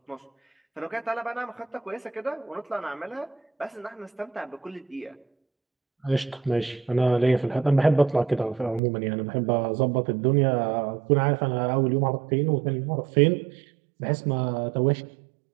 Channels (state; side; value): drops out; left; at 8.8 s